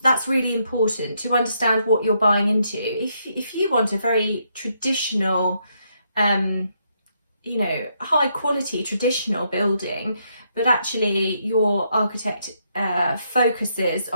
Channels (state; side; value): inverted; both; correlation -0.76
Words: really important to understand what you're buying into. If you want a very traditional, you know, high quality traditional building, but actually your architect focuses